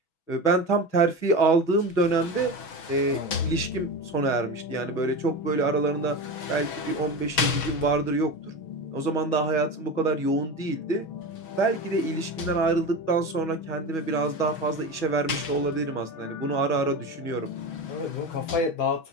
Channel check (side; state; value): right; late; 6.2 ms